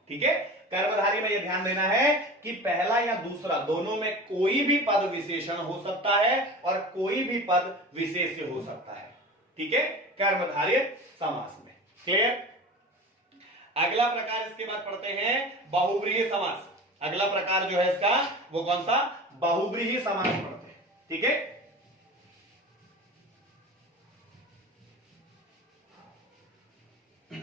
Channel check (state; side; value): normal; both; correlation 0.34